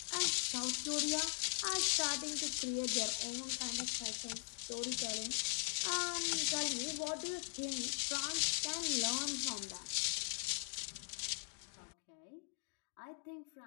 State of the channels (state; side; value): silent; right; digital silence